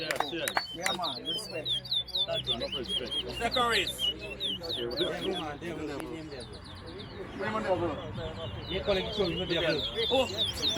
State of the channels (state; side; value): identical; both; correlation 1.00